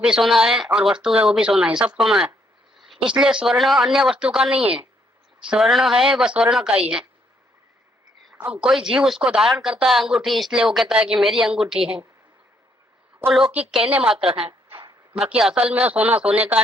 सोना है और वस्तु है वो भी सोना है, सब सोना है। इसलिए स्वर्ण अन्य वस्तु का नहीं है, स्वर्ण है वह स्वर्ण का ही है। अब कोई जीव उसको धारण करता है अंगूठी, इसलिए वो कहता है कि मेरी अंगूठी है, वो लौकिक कहने मात्र है, बाकी असल में सोना सोने का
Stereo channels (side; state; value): both; normal; correlation 0.71